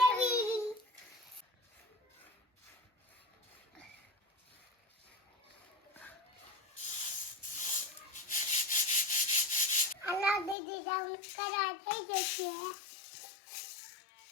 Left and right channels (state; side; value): drops out; right; at 10.6 s